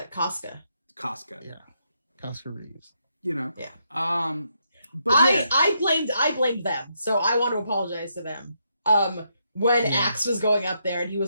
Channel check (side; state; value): both; inverted; correlation -0.78